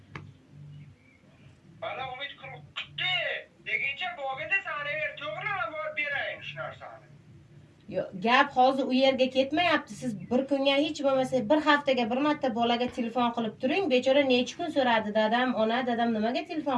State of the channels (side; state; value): both; identical; correlation 1.00